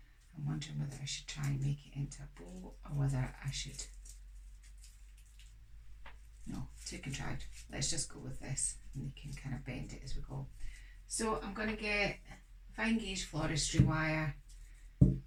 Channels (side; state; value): both; identical; correlation 1.00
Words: I'm wondering whether I should try and make it into a bow or whether I should. No, too contrived. Let's just go with this and we can kind of bend it as we go. So I'm going to get fine gauge floristry wire